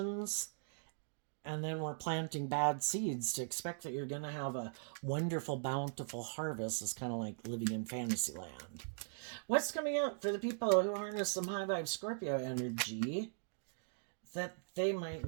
and then we're planting bad seeds to expect that you're going to have a wonderful, bountiful harvest. It's kind of like living in fantasy land. What's coming up for the people who harness some high vibe Scorpio energy that they might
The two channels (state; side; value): silent; left; digital silence